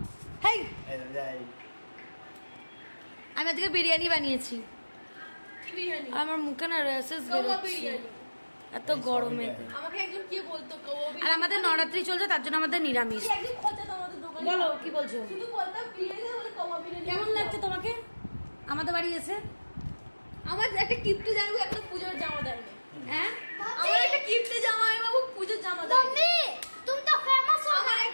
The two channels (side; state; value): both; inverted; correlation -1.00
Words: হেই এই যাই আমি আজকে বিরিয়ানি বানিয়েছি। কি বিরিয়ানি? আমার মুখে না র্যাশেস কাওয়া বেরোচ্ছে বিরিয়ানি। এত গরমে। আমাকে একজন কি বলতো কাওয়া আর বিরিয়ানি। আমাদের নবরাত্রি চলছে, তার জন্য আমাদের নিরামিষ। কি একদিন খোঁজা আমাদের দোকানে। বলো কি বলছো? শুধু বলতাম বিরিয়ানি বলে কাওয়া বিরিয়ানি। কেমন লাগছে তোমাকে আমাদের বাড়ি এসে? আমার একটা কিপ্টে জামাই একটা পূজার জামা দেয়নি। হ্যাঁ আমার একটা কিপ্টে জামাই বাবু পূজার জামা দেয়নি। मम्मी तुम तो फेमस हो। আমার